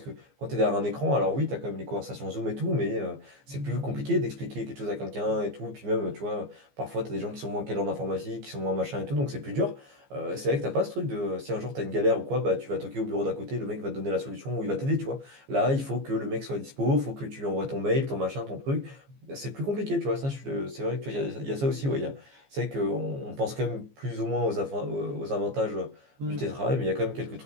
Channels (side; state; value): left; late; 15 ms